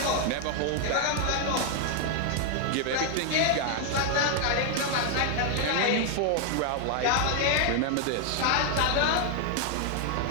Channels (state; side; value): different; both; correlation 0.00